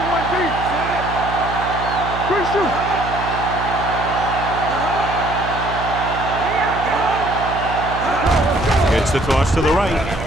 one deep. Good shoot. Gets the toss to the right.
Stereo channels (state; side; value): noise; right; hum, 8 dB below the sound